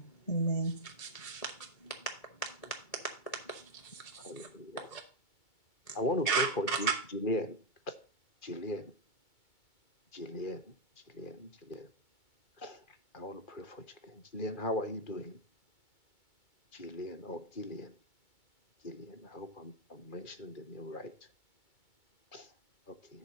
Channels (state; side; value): late; right; 2.2 ms